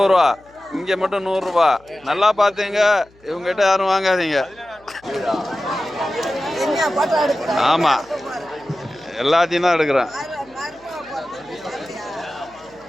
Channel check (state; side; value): noise; left; hum, 29 dB below the sound